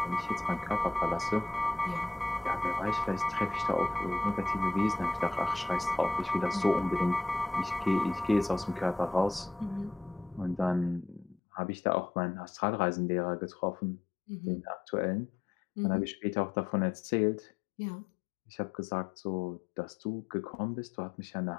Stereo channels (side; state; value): right; drops out; at 11.4 s